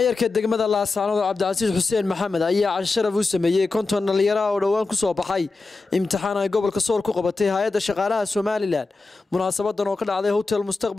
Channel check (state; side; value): quieter; right; 3.8 dB